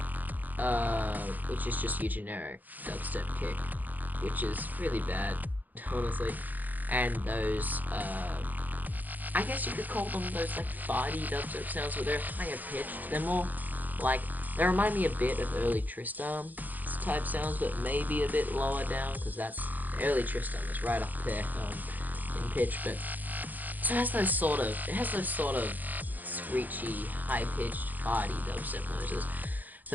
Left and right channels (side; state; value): left; late; 0.083 ms